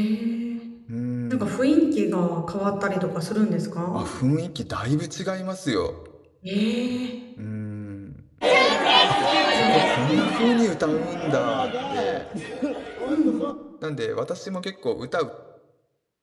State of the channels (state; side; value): identical; both; correlation 1.00